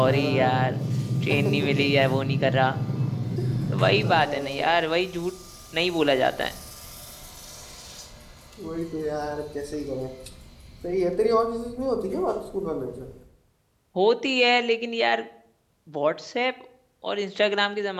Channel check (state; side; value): identical; both; correlation 1.00